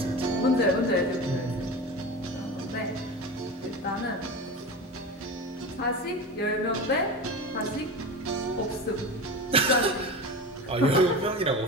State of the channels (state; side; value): normal; both; correlation 0.28